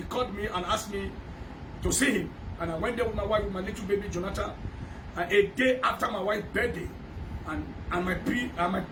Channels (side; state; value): both; identical; correlation 1.00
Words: called me and asked me to see him. And I went there with my wife, with my little baby, Jonathan. And a day after my wife's birthday, and my